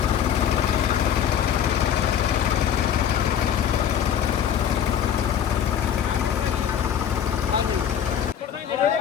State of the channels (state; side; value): quieter; right; 8.9 dB